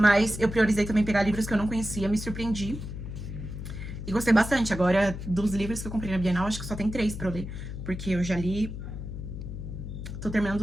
eu priorizei também pegar livros que eu não conhecia, me surpreendi. E gostei bastante. Agora, dos livros que eu comprei na Bienal, acho que só tem 3 pra eu ler. Porque eu já li... Tô terminando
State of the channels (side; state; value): left; noise; hum, 8 dB below the sound